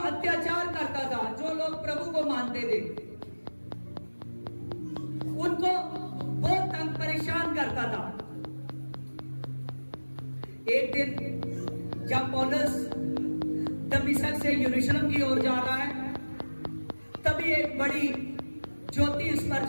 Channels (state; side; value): inverted; both; correlation -1.00